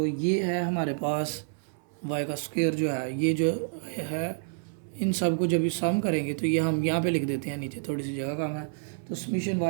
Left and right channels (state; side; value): silent; left; 59 dB below the other